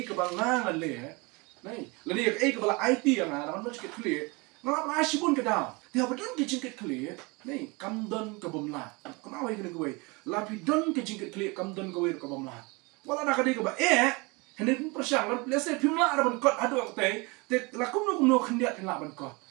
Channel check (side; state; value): left; quieter; 27.1 dB